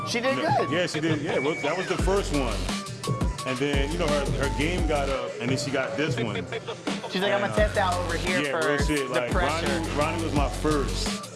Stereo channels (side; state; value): both; identical; correlation 1.00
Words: She did good. Yeah, she did. Yeah, that was the first one. And then, you know, her game got up, and then she got this one. She's like, I'm gonna test out over here Yeah, for real shit. the Like, pressure. Ronnie was my first.